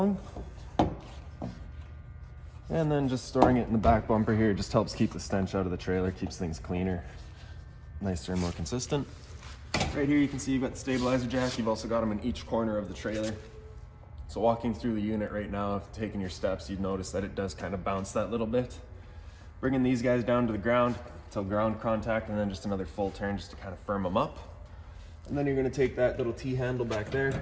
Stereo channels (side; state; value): both; identical; correlation 1.00